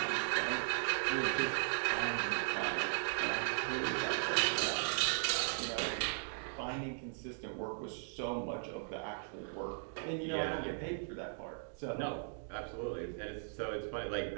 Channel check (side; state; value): left; silent; digital silence